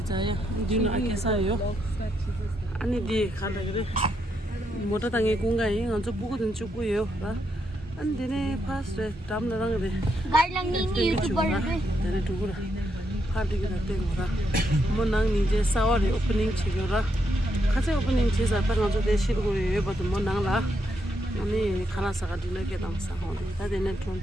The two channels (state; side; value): normal; both; correlation 0.79